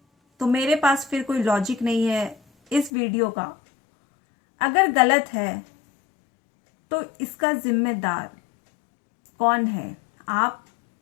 तो मेरे पास फिर कोई लॉजिक नहीं है इस वीडियो का। अगर गलत है तो इसका जिम्मेदार कौन है? आप,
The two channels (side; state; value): right; drops out; at 2.9 s